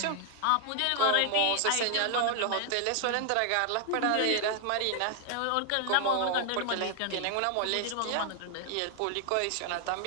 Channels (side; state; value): both; different; correlation 0.00